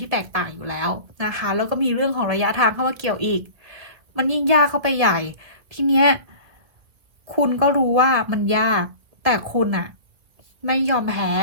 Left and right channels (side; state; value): left; late; 2.2 ms